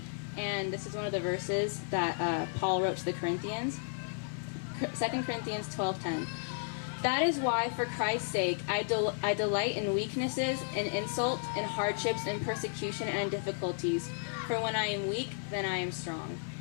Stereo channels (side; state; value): right; silent; digital silence